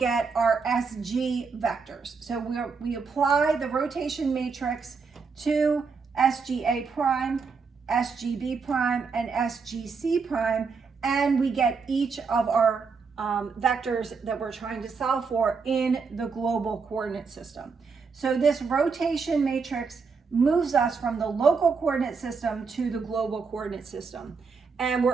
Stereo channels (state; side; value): quieter; left; 5.1 dB